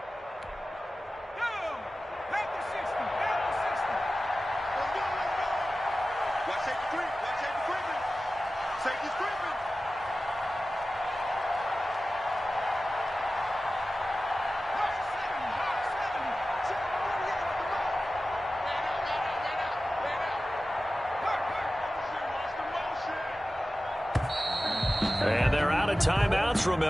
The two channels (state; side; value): normal; both; correlation 0.95